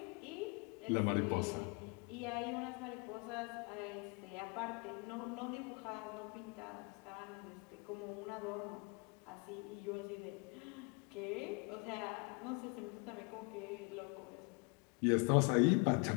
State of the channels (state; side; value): quieter; right; 31.4 dB